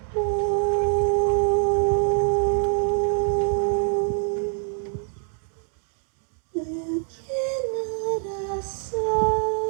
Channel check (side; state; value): left; silent; digital silence